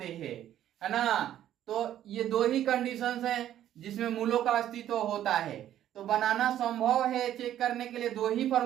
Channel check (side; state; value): left; quieter; 11.7 dB